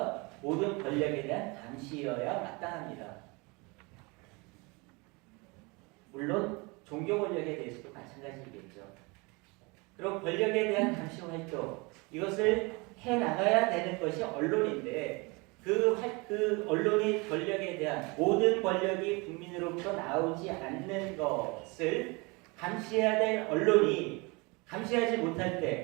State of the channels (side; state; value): left; quieter; 27.3 dB